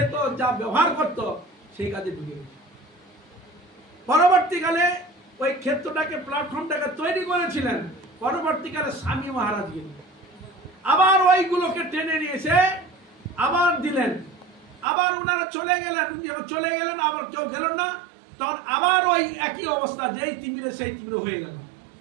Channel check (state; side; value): drops out; left; at 14.9 s